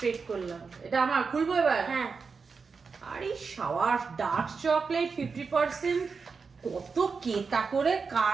করলাম। এটা আমার খুলবো এবার। হ্যাঁ। আরে শাওয়ার ডার্ক চকলেট 50%, কত কেতা করে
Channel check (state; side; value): quieter; left; 5.1 dB